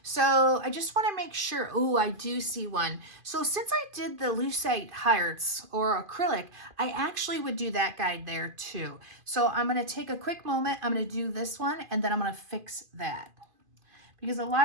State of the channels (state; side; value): late; left; 2.5 ms